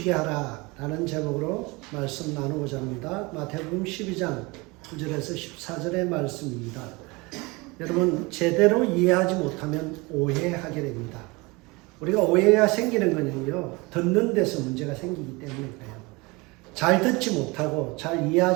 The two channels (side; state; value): left; quieter; 25.1 dB